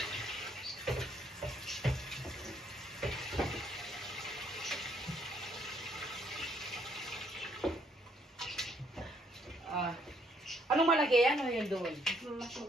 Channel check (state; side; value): normal; both; correlation 0.69